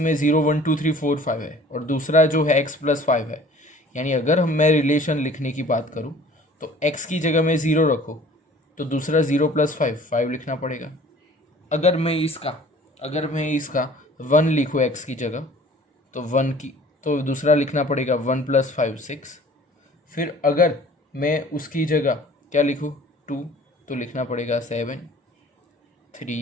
0 1 2 3 4 5 है, और दूसरा जो है x प्लस 5 है, यानी अगर मैं रिलेशन लिखने की बात करूँ तो x की जगह में 0 रखो तो दूसरा 0 प्लस 5 लिखना पड़ेगा। अगर मैं इसका 1 लिखूँ x की जगह तो 1 की, तो दूसरा लिखना पड़ेगा 1 प्लस 5 6। फिर अगर मैं उसकी जगह क्या लिखूँ 2 तो लिखना पड़ेगा 7,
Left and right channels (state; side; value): normal; both; correlation 0.50